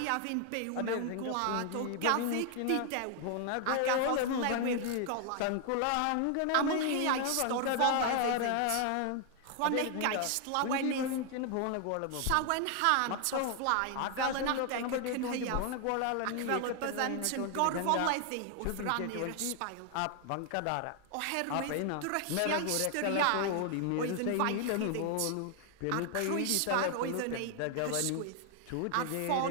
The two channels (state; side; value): different; both; correlation 0.00